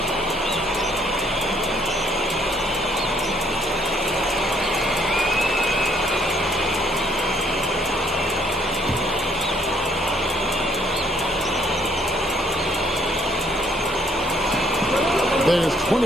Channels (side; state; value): both; normal; correlation 0.65